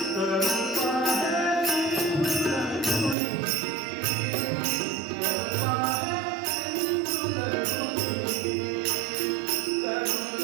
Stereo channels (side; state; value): left; drops out; at 3.2 s